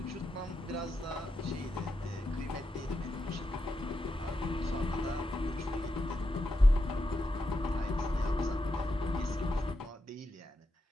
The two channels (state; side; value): normal; both; correlation 0.86